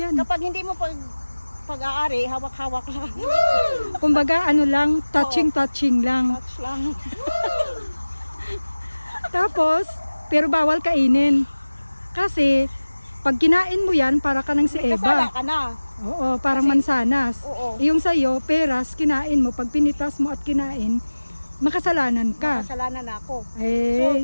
Kapag hindi mo pag-aari, hawak-hawak lang. Kumbaga ano lang, touching lang. Touch lang. Tapos, pero bawal kainin. Kasi, pag kinain mo yan, para ka ng si Kasala Eva. ka na. Oo, parang mansanas. Oo. Yung sa'yo, peras, kinain mo. Pag pinitas mo at kinain, makasalanan ka. Kasalanan na ako.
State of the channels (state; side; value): inverted; both; correlation -1.00